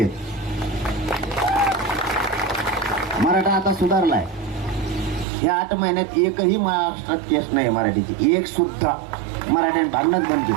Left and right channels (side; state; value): left; drops out; at 5.2 s